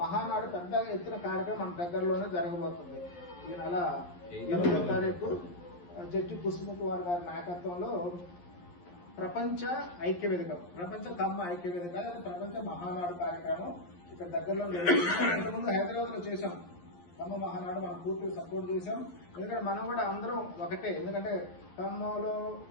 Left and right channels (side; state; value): right; late; 11 ms